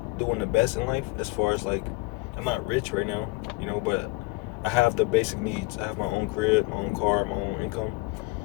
doing the best in life as far as, like, I'm not rich right now, but I have the basic needs. I have my own crib, my own car, my own income.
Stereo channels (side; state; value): right; quieter; 24.5 dB